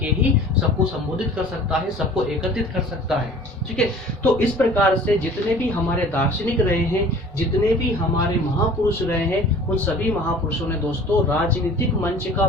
ही सबको संबोधित कर सकता है, सबको एकत्रित कर सकता है, ठीक है। तो इस प्रकार से जितने भी हमारे दार्शनिक रहे हैं, जितने भी हमारे महापुरुष रहे हैं, उन सभी महापुरुषों ने दोस्तों राजनीतिक मंच का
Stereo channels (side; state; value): both; normal; correlation 0.47